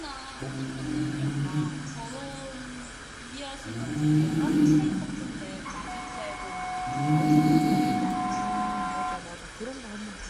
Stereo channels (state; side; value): identical; both; correlation 1.00